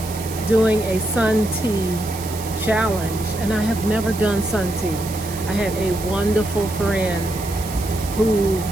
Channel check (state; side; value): noise; right; hiss, 12 dB below the sound